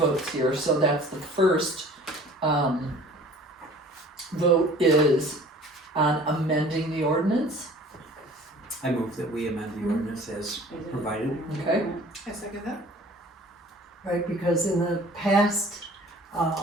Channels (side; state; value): both; normal; correlation 0.48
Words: here. So that's the first vote is on amending the ordinance, I move that we amend the ordinance as provided. okay? I second that. right, because in the past,